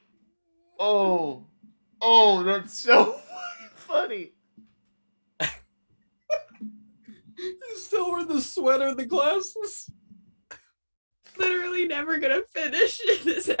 Oh, that's so funny. He's still wearing the sweater and the glasses. Literally never gonna finish in this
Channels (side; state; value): both; inverted; correlation -1.00